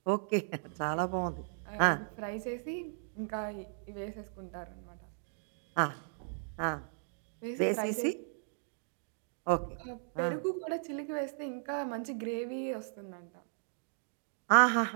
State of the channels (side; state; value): left; silent; digital silence